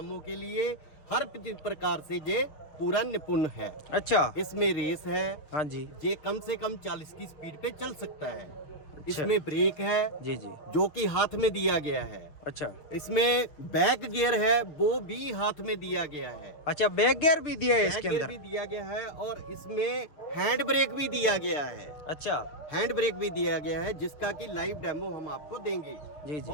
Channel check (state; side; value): late; right; 6.6 ms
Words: के लिए हर प्रकार से ये पूरा निपुण है। अच्छा, इसमें रेस है, हाँ जी, ये कम से कम 40 की स्पीड पे चल सकता है। अच्छा, इसमें ब्रेक है, जी जी, जो कि हाथ में दिया गया है। अच्छा, इसमें बैक गियर है, वो भी हाथ में दिया गया है। अच्छा, बैक गियर भी दिया है इसके बैक गियर अंदर? भी दिया गया है और इसमें हैंड ब्रेक भी दिया गया है। अच्छा, हैंड ब्रेक भी दिया गया है, जिसका कि लाइव डेमो हम आपको देंगे। जी जी,